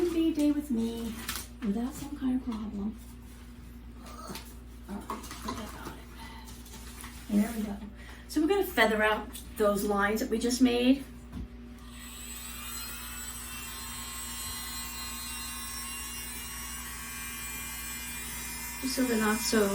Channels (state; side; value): identical; both; correlation 1.00